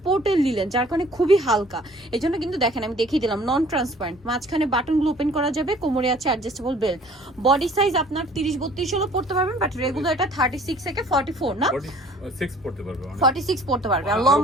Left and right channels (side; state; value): both; normal; correlation 0.53